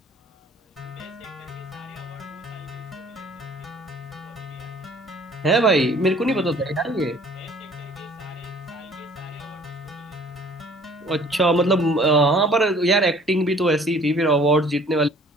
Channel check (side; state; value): both; normal; correlation 0.53